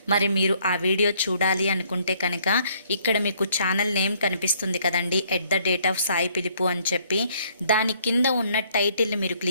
మరి మీరు ఆ వీడియో చూడాలి అనుకుంటే కనుక ఇక్కడ మీకు ఛానల్ నేమ్ కనిపిస్తుంది కదండి, @సాయి పిలుపు అని చెప్పి, దాని కింద ఉన్న టైటిల్ మీరు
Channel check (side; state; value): both; inverted; correlation -0.65